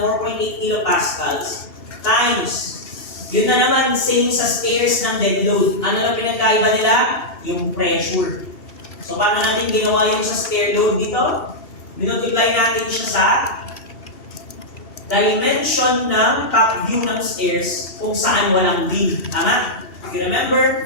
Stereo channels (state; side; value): late; right; 2.7 ms